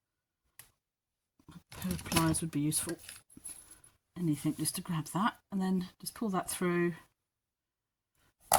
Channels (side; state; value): both; identical; correlation 1.00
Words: A pair of pliers would be useful. Anything just to grab that, and then just pull that through.